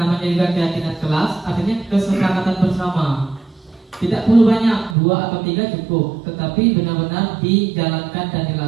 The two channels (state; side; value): drops out; left; at 5.0 s